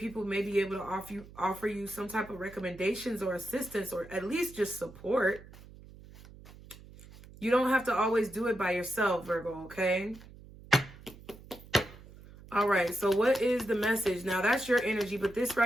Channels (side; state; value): right; noise; hum, 19 dB below the sound